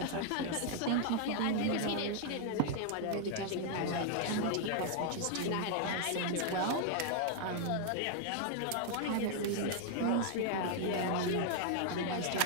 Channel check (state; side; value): different; both; correlation 0.00